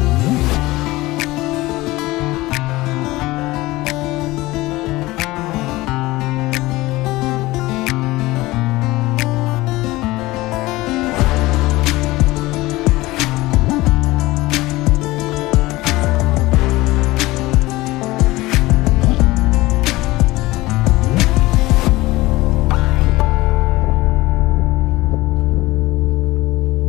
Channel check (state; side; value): quieter; right; 19.5 dB